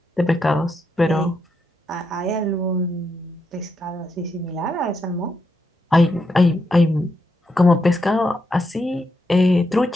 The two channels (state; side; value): normal; both; correlation 0.82